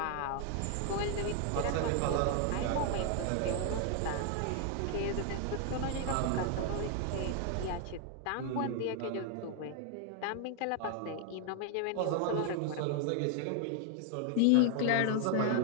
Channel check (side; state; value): both; different; correlation 0.00